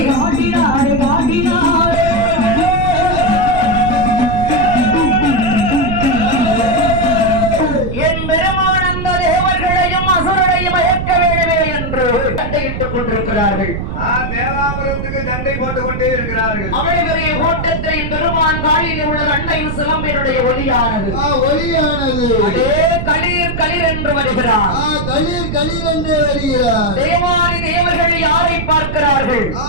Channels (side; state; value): right; noise; rumble, 4 dB below the sound